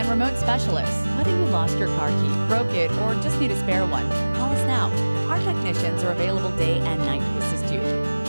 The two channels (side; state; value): both; inverted; correlation -1.00